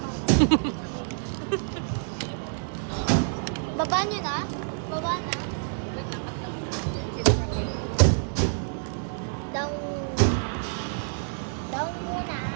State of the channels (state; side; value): silent; left; 60 dB below the other